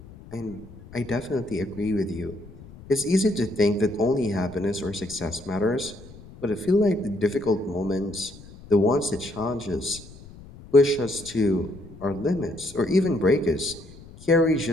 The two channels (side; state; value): left; noise; rumble, 19 dB below the sound